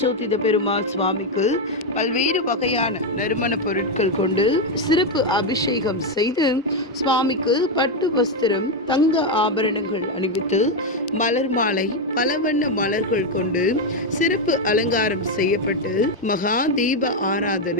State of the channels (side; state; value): both; normal; correlation 0.05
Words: பெருமாள் சுவாமிக்கு பல்வேறு வகையான நறுமண பொருட்கள் கொண்டு சிறப்பு அபிஷேகம் செய்து சுவாமிக்கு பட்டு வஸ்திரம், தங்க ஆபரணங்கள் அணிவித்து மலர் மாலை, பல வண்ண மலர்கள் கொண்டு சிறப்பு அலங்காரம் செய்யப்பட்டு மகா தீப